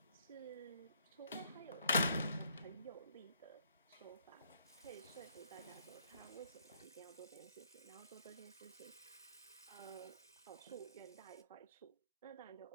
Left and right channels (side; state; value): both; inverted; correlation -0.68